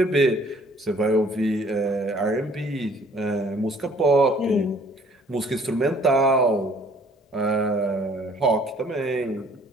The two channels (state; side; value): normal; both; correlation 0.57